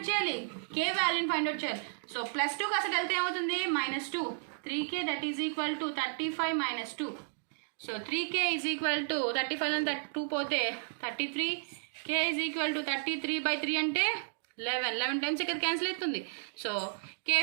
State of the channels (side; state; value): left; silent; digital silence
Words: చేయాలి, k వాల్యూని ఫైండ్ అవుట్ చేయాలి. సో ప్లస్ 2 కాస్త వెళ్తే ఏమవుతుంది -2 3k that is equal to 35 - 2. So 3k is equal to 35 అని 2 పోతే 33, k ఈజ్ ఈక్వల్ టు 33/3 అంటే 11 టైమ్స్ ఇక్కడ క్యాన్సిల్ అవుతుంది. సో k